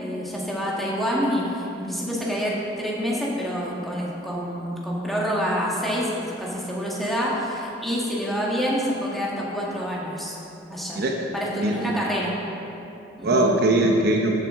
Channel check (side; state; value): both; normal; correlation 0.48